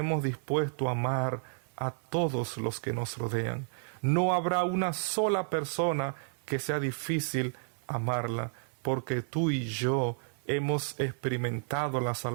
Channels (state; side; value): silent; left; 57 dB below the other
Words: dispuestos a amar a todos los que nos rodean. No habrá una sola persona que sea difícil amarla, porque tú y yo hemos experimentado la